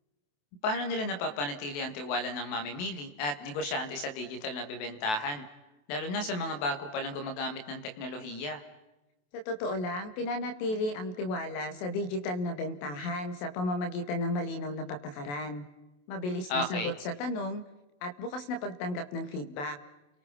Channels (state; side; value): late; right; 28 ms